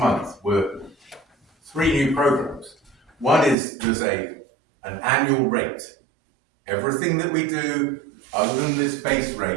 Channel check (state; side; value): drops out; left; at 3.6 s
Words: were 3 new programs. One is there's an annual rate. Everything that we do other than this base